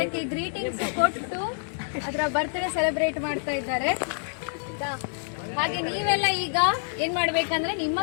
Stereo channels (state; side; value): silent; right; 60 dB below the other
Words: ಗ್ರೀಟಿಂಗ್ಸ್ ಕೊಟ್ಟು ಅದರ ಬರ್ತ್ಡೇ ಸೆಲೆಬ್ರೇಟ್ ಮಾಡ್ತಾ ಇದ್ದಾರೆ. ಹಾಗೆ ನೀವೆಲ್ಲ ಈಗ ಏನು ಮಾಡಬೇಕಂದ್ರೆ ನಿಮ್ಮ